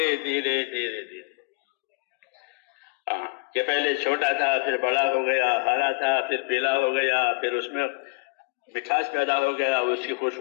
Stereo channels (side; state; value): right; quieter; 27.7 dB